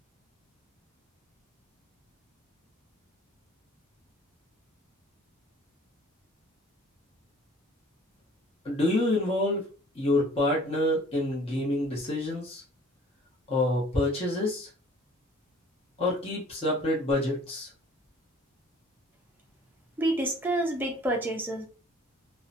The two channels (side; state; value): both; normal; correlation 0.52